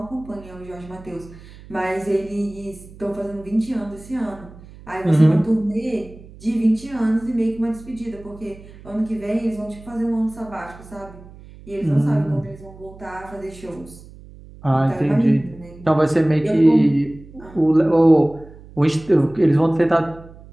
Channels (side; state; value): right; noise; hum, 20 dB below the sound